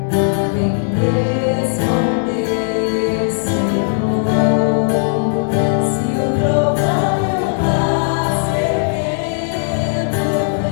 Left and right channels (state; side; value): silent; right; 68 dB below the other